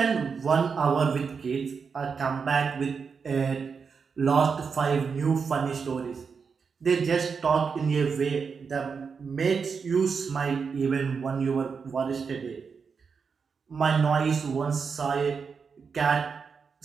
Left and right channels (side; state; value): left; quieter; 5.7 dB